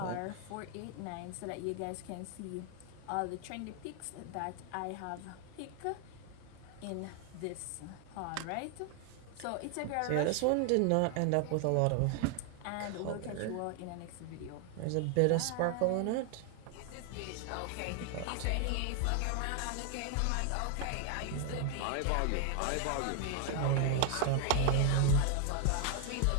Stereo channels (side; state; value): both; different; correlation 0.00